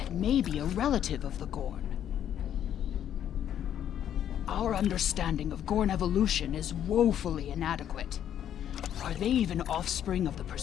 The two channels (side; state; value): right; quieter; 10.1 dB